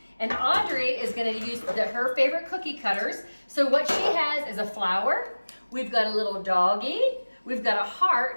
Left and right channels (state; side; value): inverted; both; correlation -1.00